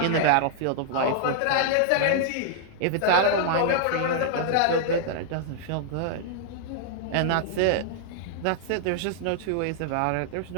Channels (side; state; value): both; different; correlation -0.01